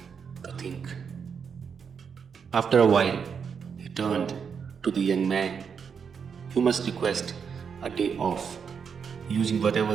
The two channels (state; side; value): quieter; left; 6.5 dB